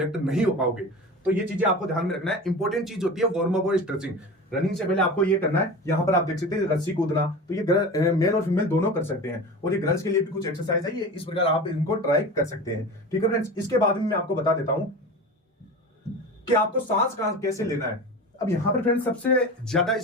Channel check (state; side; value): normal; both; correlation 0.32